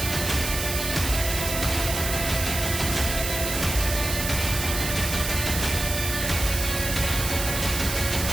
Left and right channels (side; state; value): right; noise; hiss, 3 dB below the sound